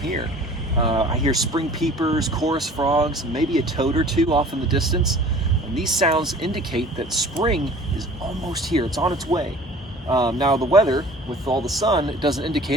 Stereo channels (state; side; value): normal; both; correlation 0.46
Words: I hear spring peepers, chorus frogs, maybe a toad or two off in the distance. And these sounds indicate that spring is almost here. It's on its way. Now the weather, with all the sun, it doesn't